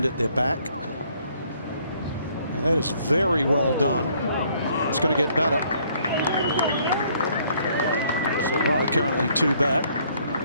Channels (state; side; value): inverted; both; correlation -0.65